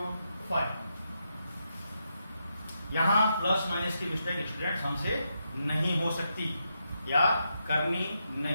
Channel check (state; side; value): inverted; both; correlation -0.83